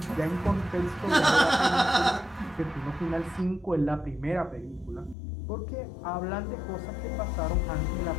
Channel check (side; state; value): right; drops out; at 5.2 s